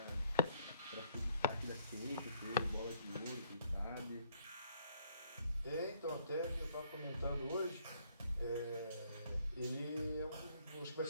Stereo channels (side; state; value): both; inverted; correlation -0.64